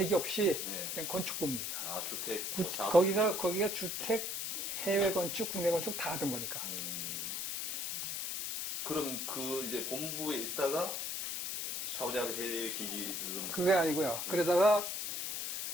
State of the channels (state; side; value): noise; left; hiss, 3 dB below the sound